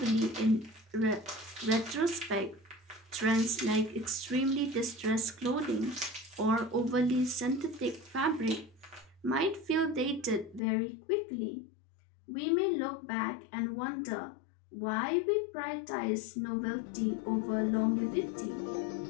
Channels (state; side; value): drops out; right; at 10.6 s